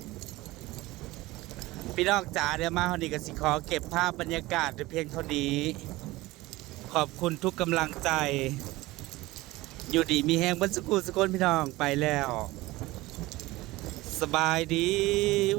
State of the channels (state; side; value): quieter; left; 19.4 dB